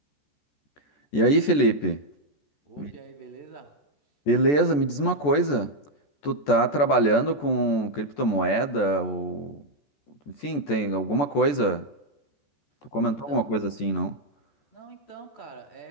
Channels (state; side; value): late; right; 14 ms